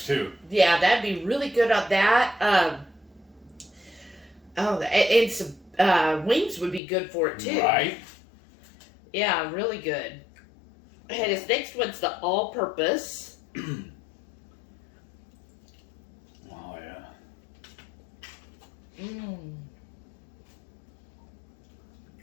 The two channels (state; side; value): drops out; right; at 6.8 s